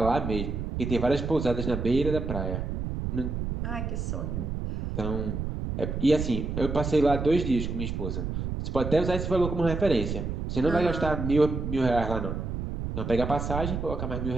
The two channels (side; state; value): right; noise; rumble, 3 dB below the sound